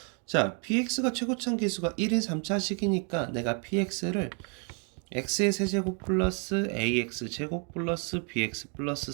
자, px가 최고차항 계수가 1인 3차식이니까 내가 px를 x의 세제곱 플러스 ax 제곱 플러스 bx 플러스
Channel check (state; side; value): quieter; left; 37.9 dB